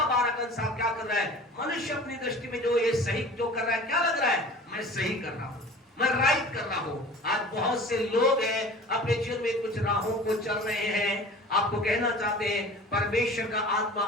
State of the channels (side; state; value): both; normal; correlation 0.42